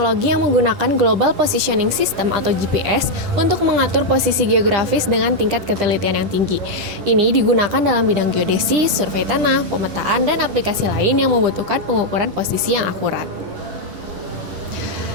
yang menggunakan Global Positioning System atau GPS untuk mengatur posisi geografis dengan tingkat ketelitian yang tinggi. Ini digunakan dalam bidang geodesi, survei tanah, pemetaan, dan aplikasi lain yang membutuhkan pengukuran posisi yang akurat.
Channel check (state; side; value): late; left; 10 ms